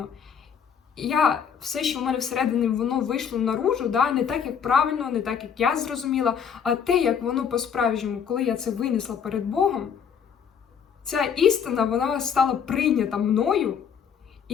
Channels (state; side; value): quieter; right; 7.4 dB